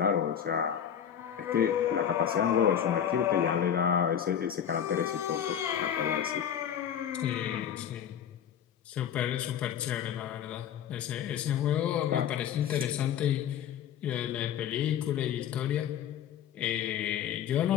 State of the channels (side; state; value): right; quieter; 9.1 dB